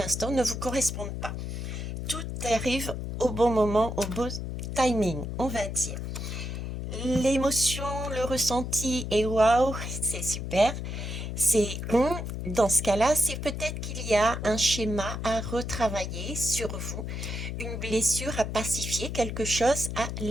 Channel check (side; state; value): left; noise; hum, 5 dB below the sound